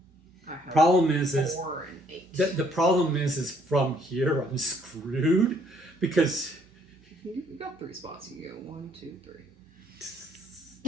I have Problem is 4 and 8. the problem is from here I'm screwed because You've got 3 spots. You go 1, 2, 3.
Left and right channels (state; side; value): normal; both; correlation 0.66